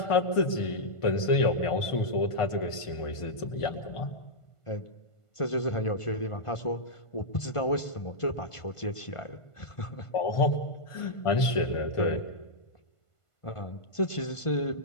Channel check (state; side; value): late; right; 1.5 ms